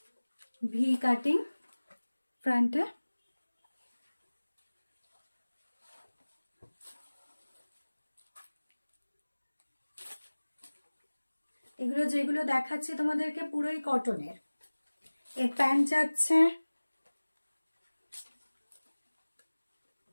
ভি কাটিং ফ্রন্টে, এগুলো যেগুলো দেখাচ্ছি তোমাদেরকে পুরোই কটনের। এর প্যান্ট যাচ্ছে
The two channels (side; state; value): both; inverted; correlation -1.00